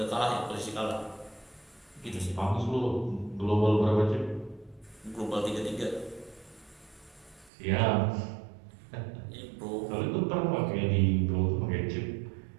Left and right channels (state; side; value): drops out; left; at 7.5 s